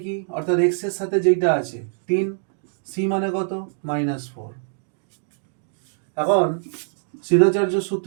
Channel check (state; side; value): silent; left; digital silence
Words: কি অর্থাৎ x এর সাথে যেটা আছে 3, c মানে কত -4। এখন শ্রীধরাচার্য